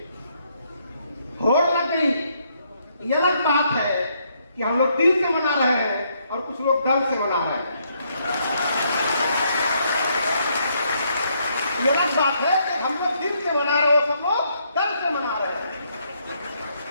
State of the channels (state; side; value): inverted; both; correlation -0.73